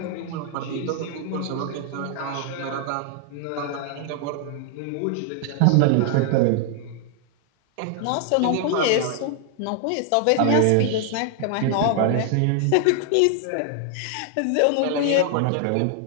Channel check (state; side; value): different; both; correlation 0.00